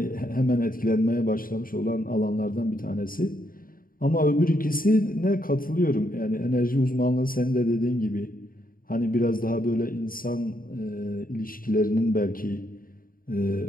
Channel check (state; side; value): late; right; 0.41 ms